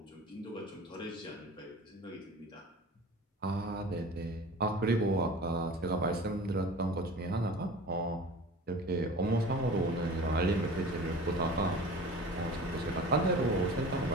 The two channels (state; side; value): normal; both; correlation 0.39